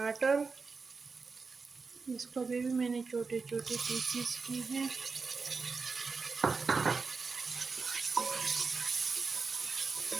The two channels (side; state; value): left; quieter; 4.6 dB